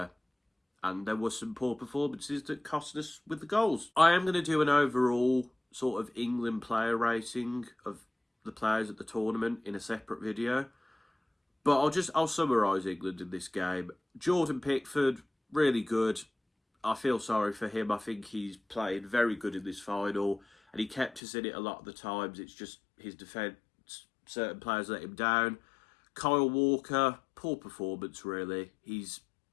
and there were some poor performances that cost us with the goals. I am going to do an overall sort of England player rating of the players at the tournament in a separate video. But I'll summarise England in this game. Jordan Pickford, really good. I feel sorry for him. I think he's played very good in this final, and he kept us in it a lot of the times. It's just his defence, certain players let him down. Kyle Walker, poor performance really. He's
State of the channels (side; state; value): right; drops out; at 21.2 s